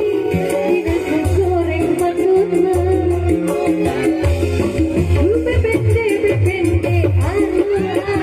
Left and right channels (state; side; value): identical; both; correlation 1.00